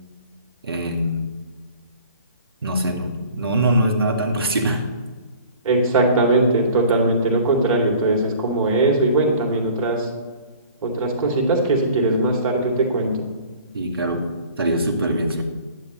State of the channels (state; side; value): inverted; both; correlation -0.48